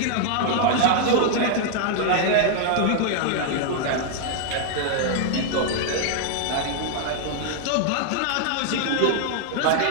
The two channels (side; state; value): both; different; correlation 0.00